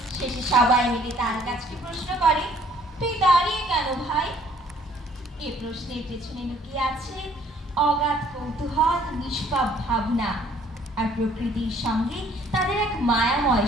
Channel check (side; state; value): both; normal; correlation 0.60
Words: শেষে সবাই মিলে তার কাছে প্রশ্ন করে, তুই দাঁড়িয়ে কেন ভাই? এ প্রশ্নের পেছনে লুকিয়ে আছে অগাধ কৌতূহল, নিষ্পাপ ভাবনা আর প্রকৃতির সঙ্গে তাদের এক মায়াময়